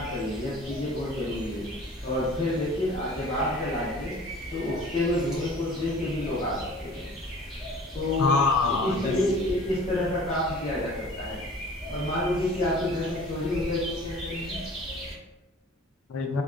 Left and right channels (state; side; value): normal; both; correlation 0.46